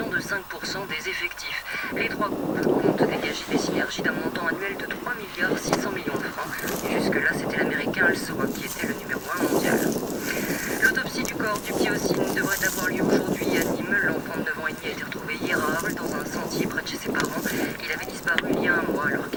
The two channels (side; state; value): both; identical; correlation 1.00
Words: de 5% des effectifs. Les 3 groupes comptent dégager des synergies d'un montant annuel de 3 milliards 600 millions de francs. Et jusque-là, c'était l'américain Alsoa qui était le numéro 1 mondial. L'autopsie du corps du petit Ossine devrait avoir lieu aujourd'hui à Nîmes. L'enfant de 9 ans et demi a été retrouvé hier à Arles dans un sentier près de chez ses parents. Il avait disparu il y a un mois alors